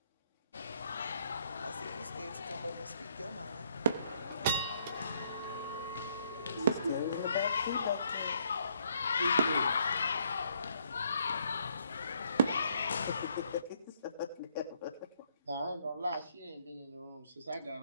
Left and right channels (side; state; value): both; inverted; correlation -0.69